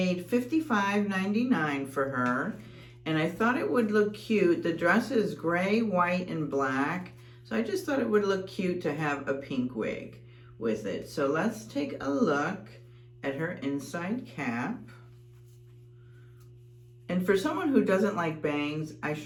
$55.99 for her, and I thought it would look cute. The dress is gray, white, and black, so I just thought it would look cute to have a pink wig with it. So let's take a look at her inside cap. And for someone who doesn't like bangs, I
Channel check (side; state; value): both; identical; correlation 1.00